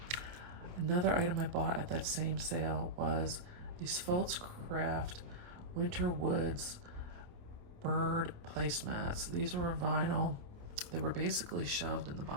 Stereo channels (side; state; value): left; late; 28 ms